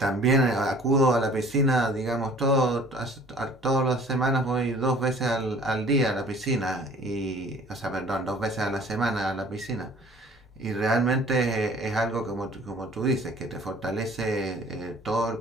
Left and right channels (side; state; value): both; normal; correlation 0.51